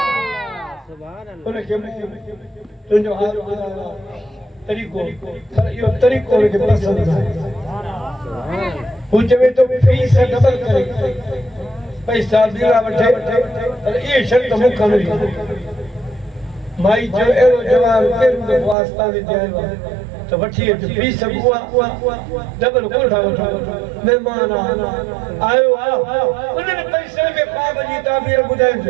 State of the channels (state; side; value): drops out; left; at 18.8 s